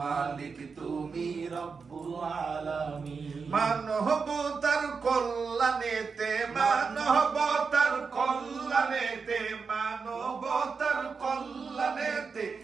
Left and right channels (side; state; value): left; quieter; 5.2 dB